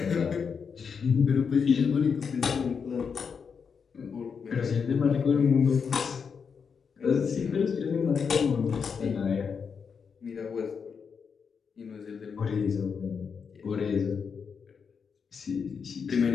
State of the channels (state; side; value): quieter; right; 6.2 dB